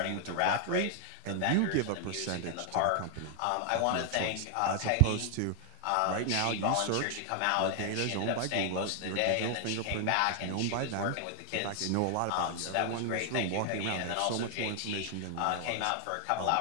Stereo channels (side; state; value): both; different; correlation 0.00